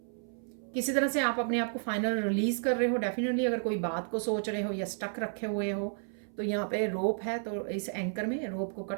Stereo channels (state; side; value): silent; left; 57 dB below the other